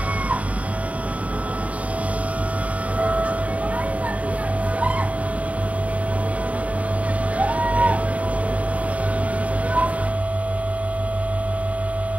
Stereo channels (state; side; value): late; left; 0.068 ms